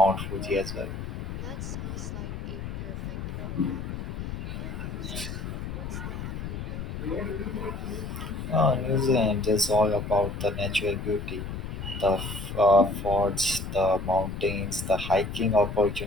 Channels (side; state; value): left; noise; rumble, 6 dB below the sound